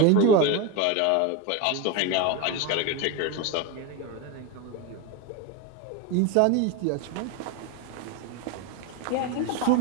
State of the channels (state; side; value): different; both; correlation 0.04